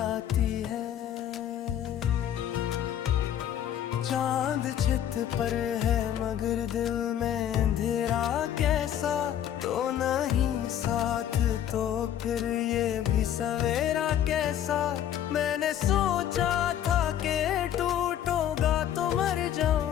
है। चांद छित पर है मगर दिल में अंधेरा कैसा, तो नहीं साथ तो फिर ये भी सवेरा कैसा। मैंने सोचा था कि टूटूंगा तो मर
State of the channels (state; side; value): quieter; right; 10.5 dB